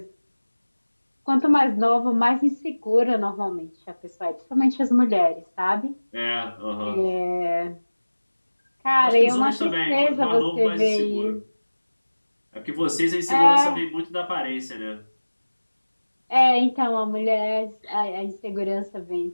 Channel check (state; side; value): inverted; both; correlation -1.00